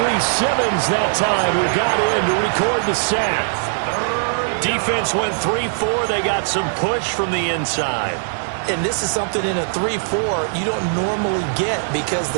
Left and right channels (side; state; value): left; silent; 60 dB below the other